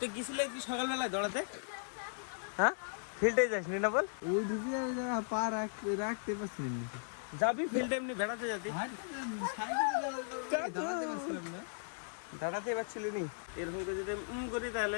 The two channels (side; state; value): right; silent; digital silence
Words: গেছিলে কি সকালবেলায় দৌড়াতে? হ্যাঁ ফিল্ডে যাসনি না বল? ওই ঢুকে পা রাখতে পারছি না। যাবি ফিল্ডে এমনি বেড়াতে যাবি? দাঁড়াতে পারছিলি নি? এরকম করে যদি করি